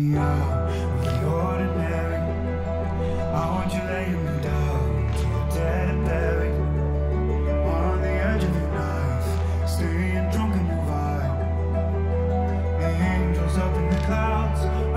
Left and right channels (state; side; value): identical; both; correlation 1.00